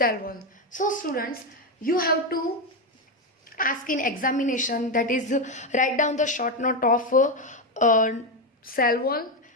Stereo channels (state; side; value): normal; both; correlation 0.09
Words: wall. So students, you have to ask in examination, that is write down the short note of cell wall